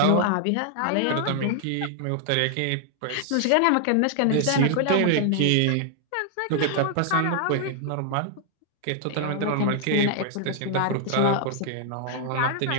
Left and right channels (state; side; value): different; both; correlation 0.00